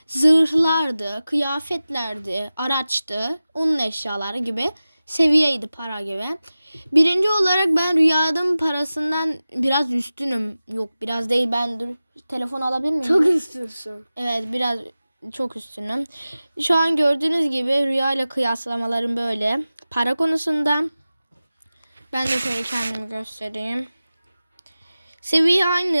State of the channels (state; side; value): inverted; both; correlation -0.96